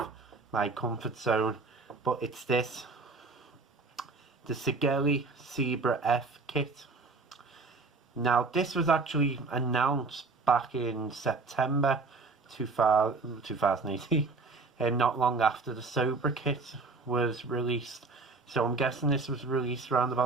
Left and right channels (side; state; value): left; quieter; 3.9 dB